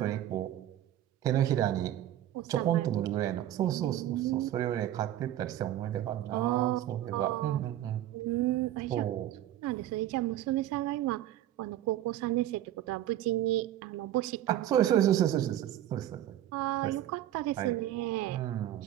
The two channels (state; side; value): quieter; left; 12.7 dB